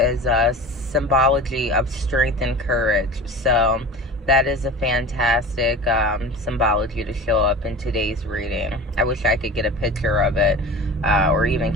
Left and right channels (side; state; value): both; normal; correlation 0.34